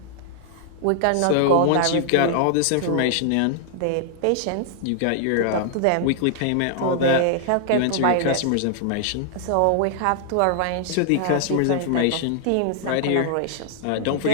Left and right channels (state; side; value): different; both; correlation 0.00